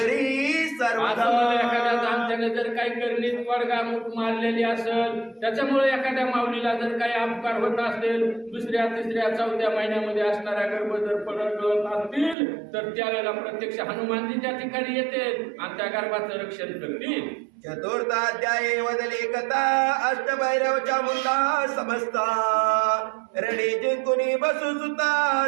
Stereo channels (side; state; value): left; drops out; at 12.4 s